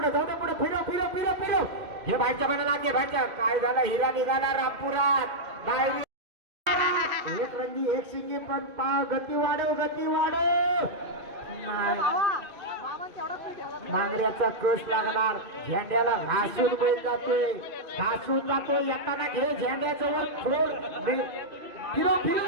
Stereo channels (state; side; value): late; left; 2.6 ms